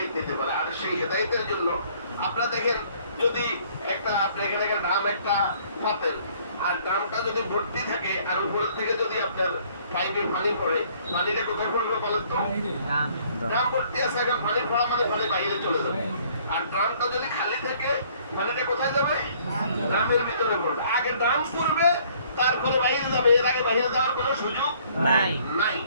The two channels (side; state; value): both; inverted; correlation -0.60